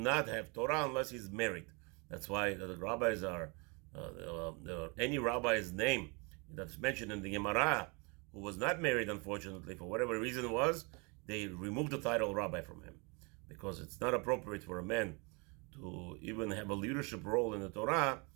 have Torah unless he's married. That's why the rabbis are any rabbi's name that's mentioned in the Gemara who was not married, unfortunately, for whatever reason it was, they removed the title rabbi from him, because it's not appropriate for a man to even have a leadership role in the Torah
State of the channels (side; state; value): left; quieter; 31.0 dB